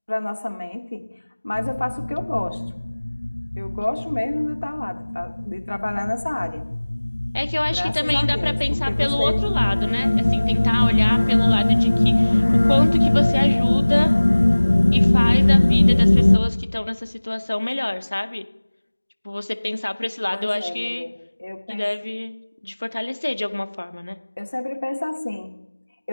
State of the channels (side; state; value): both; inverted; correlation -1.00